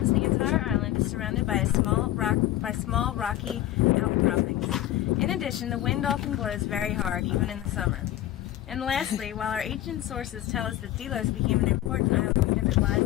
the entire island is surrounded by small rocky outcroppings. In addition, the wind often blows very hard, even in the summer. And lastly, while our ancient sources tell us that Delos became an important island because it lies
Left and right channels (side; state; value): right; quieter; 13.8 dB